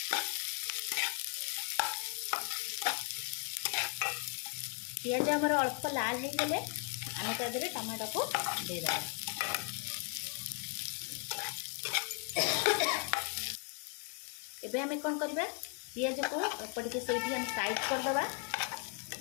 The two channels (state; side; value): quieter; right; 35.3 dB